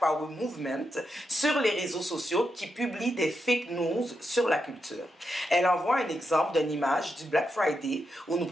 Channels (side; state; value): both; normal; correlation 0.85